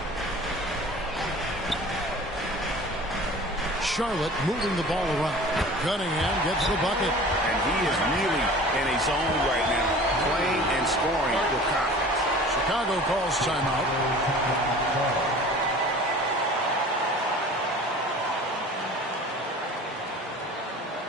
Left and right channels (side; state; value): both; normal; correlation 0.43